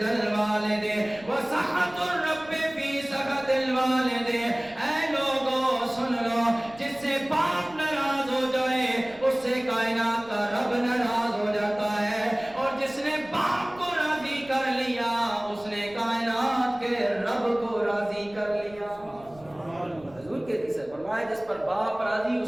الوالد وسخط الرب فی سخط الوالد۔ اے لوگو سن لو، جس سے باپ ناراض ہو جائے اس سے کائنات کا رب ناراض ہو جاتا ہے، اور جس نے باپ کو راضی کر لیا اس نے کائنات کے رب کو راضی کر لیا۔ حضور کے حدیث ہے، فرمایا جس پر باپ راضی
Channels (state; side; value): noise; right; rumble, 23 dB below the sound